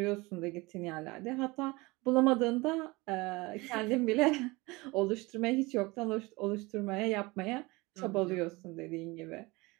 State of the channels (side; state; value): left; quieter; 23.5 dB